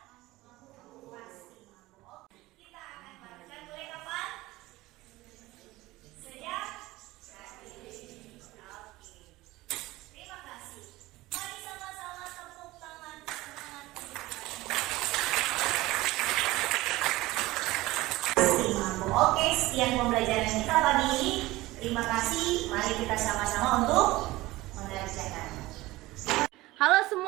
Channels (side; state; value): left; quieter; 18.9 dB